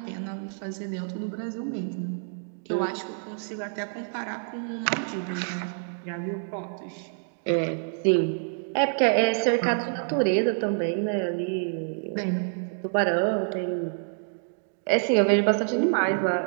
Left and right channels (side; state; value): left; silent; digital silence